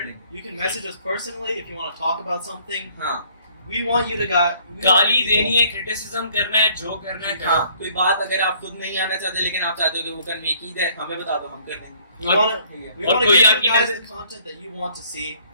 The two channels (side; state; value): both; inverted; correlation -0.60